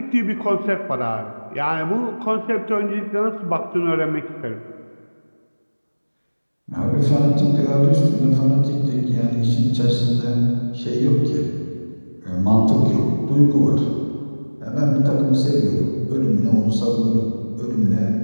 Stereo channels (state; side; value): inverted; both; correlation -1.00